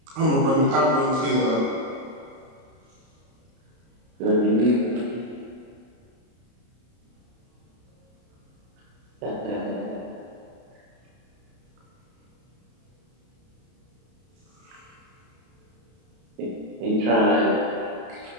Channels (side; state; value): left; late; 32 ms